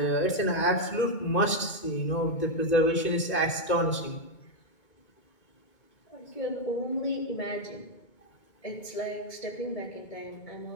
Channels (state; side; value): late; right; 2.2 ms